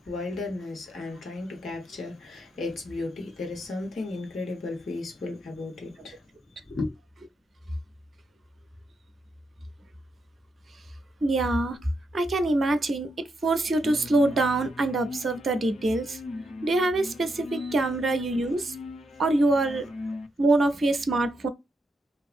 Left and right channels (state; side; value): normal; both; correlation 0.82